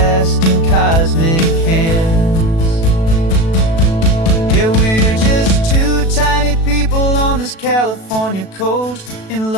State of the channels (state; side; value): late; right; 36 ms